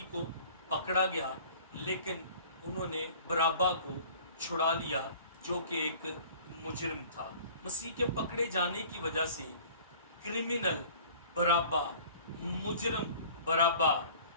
को पकड़ा गया, लेकिन उन्होंने बराबा को छुड़ा लिया जो कि एक मुजरिम था। मसीह के पकड़े जाने की वजह से क्रिमिनल बराबा, मुजरिम बराबा,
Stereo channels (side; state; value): both; inverted; correlation -0.48